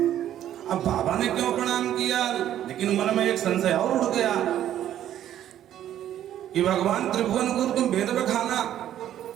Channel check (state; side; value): quieter; left; 11.4 dB